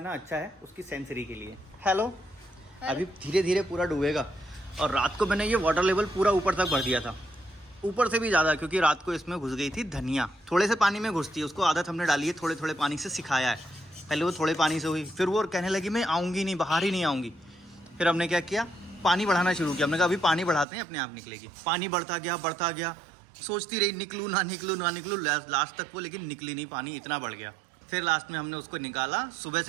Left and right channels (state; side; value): drops out; left; at 20.7 s